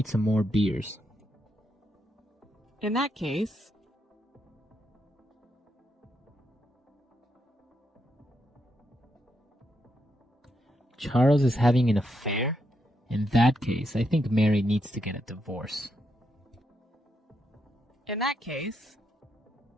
some more beers. In that case. Charles is having an affair? In that case, I think Mary needs to get a divorce. In that case.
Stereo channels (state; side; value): normal; both; correlation 0.81